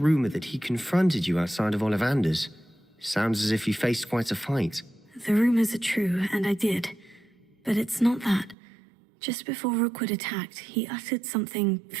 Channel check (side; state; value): left; drops out; at 8.6 s